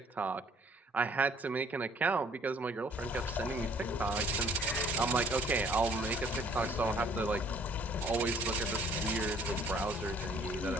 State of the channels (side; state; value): both; normal; correlation 0.58